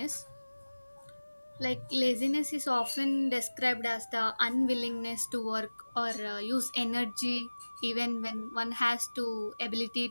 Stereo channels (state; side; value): inverted; both; correlation -1.00